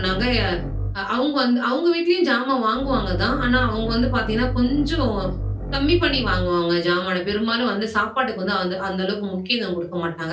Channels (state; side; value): identical; both; correlation 1.00